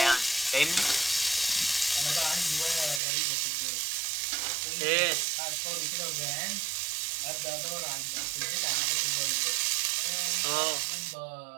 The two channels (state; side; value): drops out; left; at 3.0 s